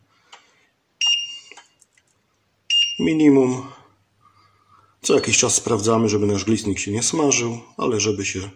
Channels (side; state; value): both; identical; correlation 1.00